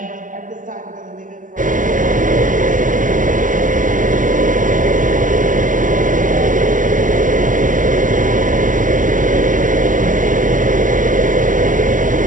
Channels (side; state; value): left; late; 0.38 ms